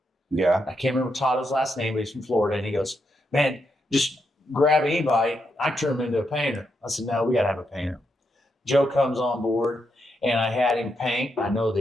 Yeah. I can't remember Totto's last name, but he's from Florida. And he goes, man, just grab anybody. I turn him into a painter. I said, no, we got to have a painter. Joe comes on board, and I had him paint. I know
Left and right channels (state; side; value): normal; both; correlation 0.82